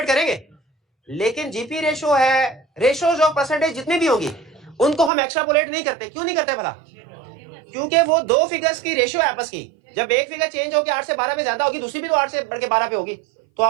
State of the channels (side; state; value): left; drops out; at 5.1 s